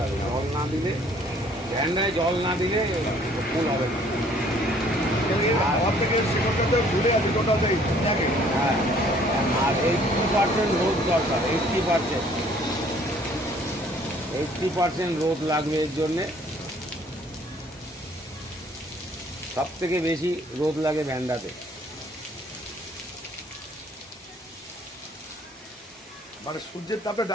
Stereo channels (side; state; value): both; normal; correlation 0.59